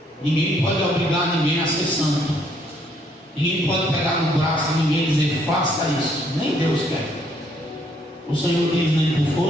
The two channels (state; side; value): normal; both; correlation 0.68